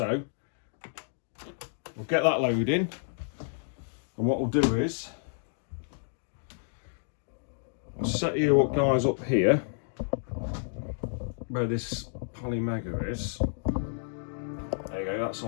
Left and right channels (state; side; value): silent; right; digital silence